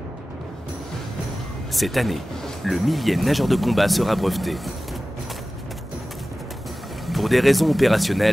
Cette année, le 1000e nageur de combat sera breveté. Pour des raisons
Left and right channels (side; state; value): both; normal; correlation 0.96